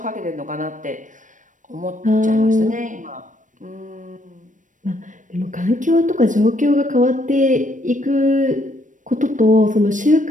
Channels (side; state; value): left; late; 0.37 ms